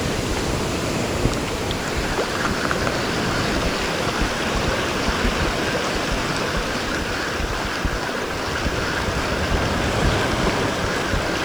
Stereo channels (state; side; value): noise; right; hiss, 23 dB below the sound